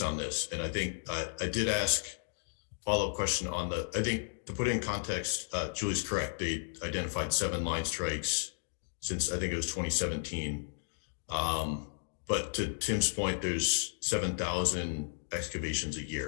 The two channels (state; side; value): silent; right; digital silence